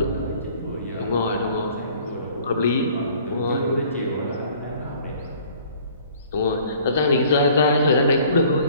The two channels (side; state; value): both; inverted; correlation -0.54